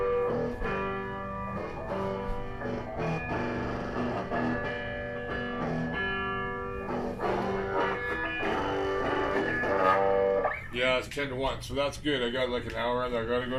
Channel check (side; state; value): both; identical; correlation 1.00